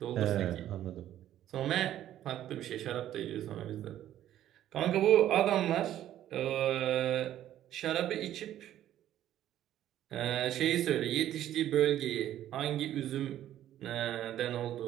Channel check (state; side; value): quieter; left; 12.2 dB